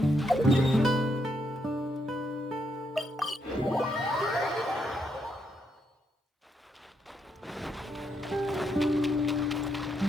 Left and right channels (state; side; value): normal; both; correlation 0.78